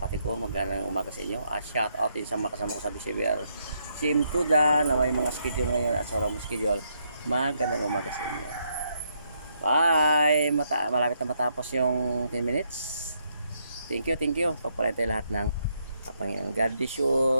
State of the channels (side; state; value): both; inverted; correlation -0.77